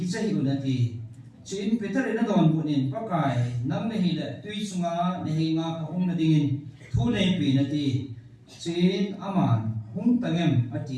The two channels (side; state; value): both; identical; correlation 1.00